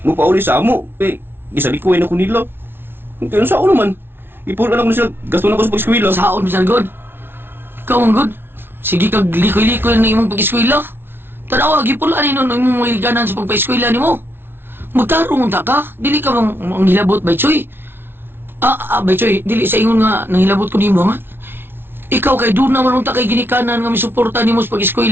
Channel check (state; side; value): late; left; 0.11 ms